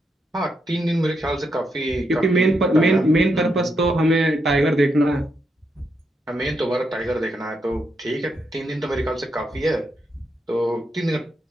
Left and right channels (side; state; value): both; normal; correlation 0.81